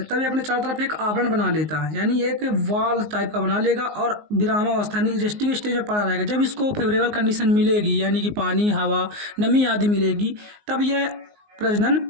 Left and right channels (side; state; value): left; late; 19 ms